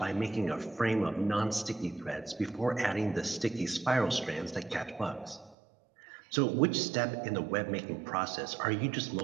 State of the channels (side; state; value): left; drops out; at 5.6 s